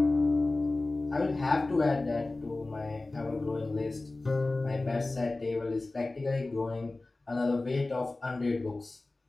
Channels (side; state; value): right; quieter; 3.1 dB